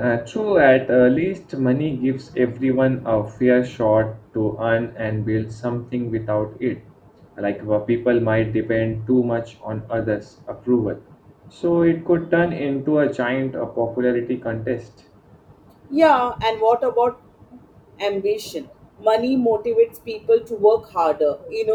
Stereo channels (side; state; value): both; identical; correlation 1.00